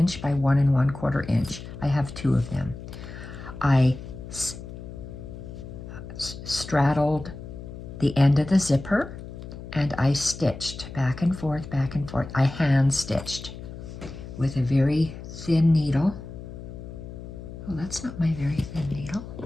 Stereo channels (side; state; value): left; noise; hum, 12 dB below the sound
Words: by 1 1/4 inch. I have 2 of them. I straddled the end of the zipper and I stitched back and forth, back and forth. I hand stitched with a very thin needle. Oh, that's not my very thin needle.